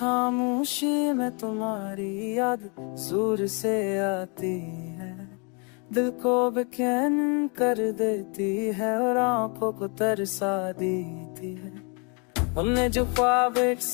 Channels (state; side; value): quieter; right; 34.4 dB